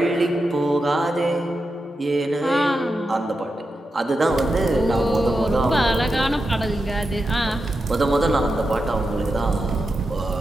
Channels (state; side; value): normal; both; correlation 0.88